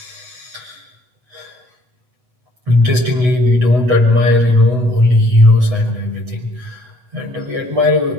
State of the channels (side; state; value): left; late; 8.0 ms